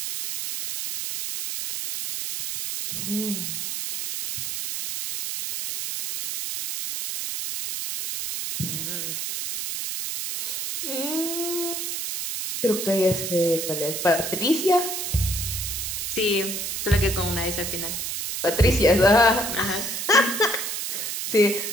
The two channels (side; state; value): right; noise; hiss, 4 dB below the sound